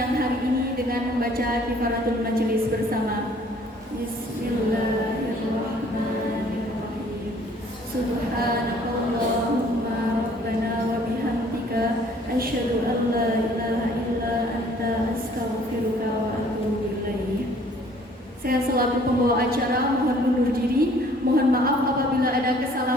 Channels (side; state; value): both; normal; correlation 0.57